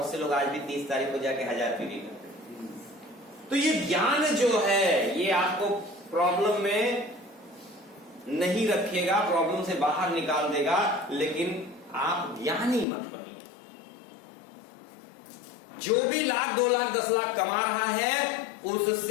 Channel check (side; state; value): right; drops out; at 12.9 s